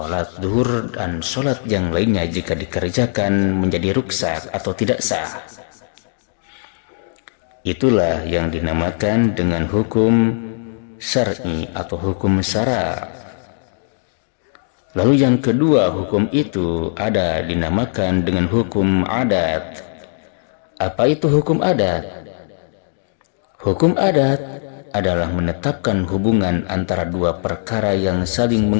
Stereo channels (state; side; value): silent; right; digital silence